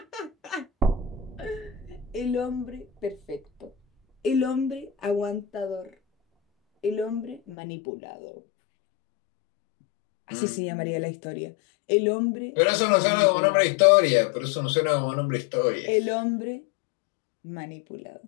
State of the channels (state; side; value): drops out; right; at 7.6 s